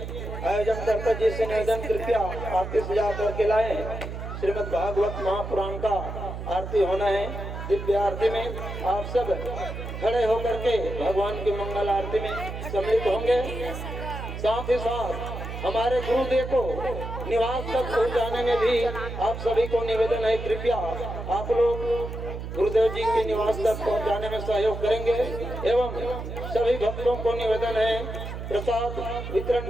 आयोजन कर्ता जी से निवेदन, कृपया आरती सजा करके लाएं। श्रीमद् भागवत महापुराण का आरती होना है। दिव्य आरती में आप सब खड़े होकर के भगवान की मंगल आरती में सम्मिलित होंगे। साथ ही साथ हमारे गुरुदेव को निवास तक पहुंचाने में भी आप सभी को निवेदन है, कृपया आप लोग गुरुदेव जी के निवास तक पहुंचाने में सहयोग करेंगे एवं सभी भक्तों को निवेदन है प्रसाद वितरण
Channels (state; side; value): noise; right; hum, 7 dB below the sound